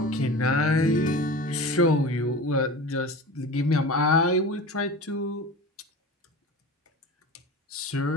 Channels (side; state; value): both; normal; correlation 0.33